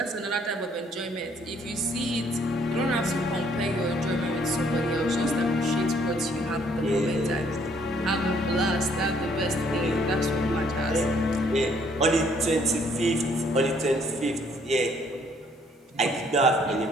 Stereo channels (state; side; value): normal; both; correlation 0.64